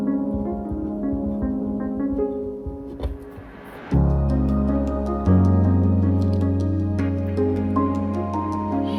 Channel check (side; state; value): both; identical; correlation 1.00